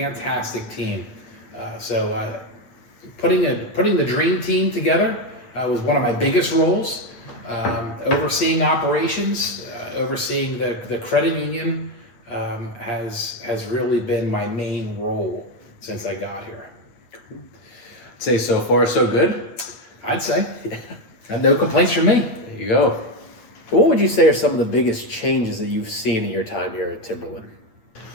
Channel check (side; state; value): right; late; 8.7 ms